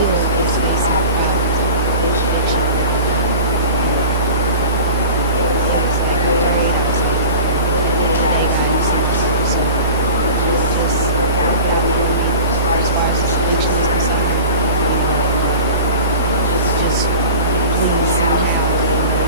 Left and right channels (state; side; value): inverted; both; correlation -0.36